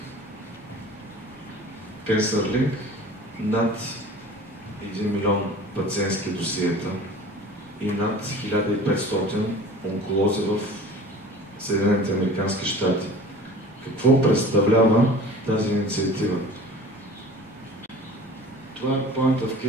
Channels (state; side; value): normal; both; correlation 0.43